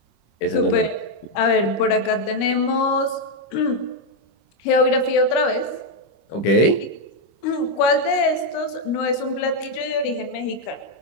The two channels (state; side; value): late; right; 25 ms